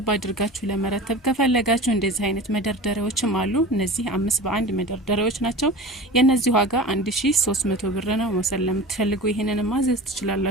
አድርጋችሁ ለመረተብ ከፈለጋችሁ እንደዚህ አይነት መደርደሪያዎችም አሉ። እነዚህ 5 በ1 መደርደሪያዎች ናቸው። የነዚህ ዋጋ 1300 ብር ነው። መውሰድ ለምትፈልጉ ይሄንን ማዘዝ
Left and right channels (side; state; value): both; normal; correlation 0.35